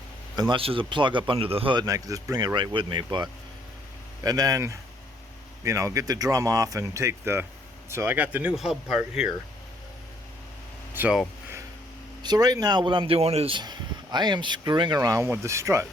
unless there's a plug up under the hood and I can just bring it right with me. But and then, you know, get the drum off and take the, so I got the new hub part here. So right now what I'm doing is I am screwing around with the strut.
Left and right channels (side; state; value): both; normal; correlation 0.66